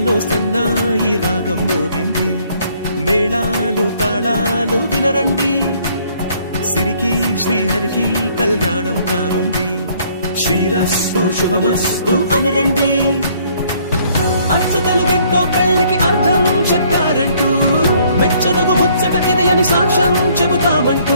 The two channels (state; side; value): inverted; both; correlation -0.63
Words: సన్నాయి రాగం మోగింది, మేళాలు తాళాలు వినరండి, సిరికి శ్రీహరికి కళ్యాణం కానుంది, శ్రీరస్తు శుభమస్తు అనరండి. అచ్చతలు గంటో పెళ్లికి అర్థం చెప్పారంటూ, మెచ్చదగు ముచ్చట ఇది అని సాక్ష్యం చెబుతామంటూ,